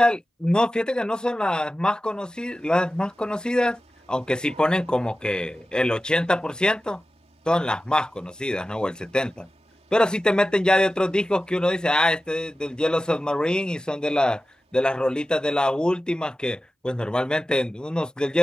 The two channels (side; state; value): both; normal; correlation 0.94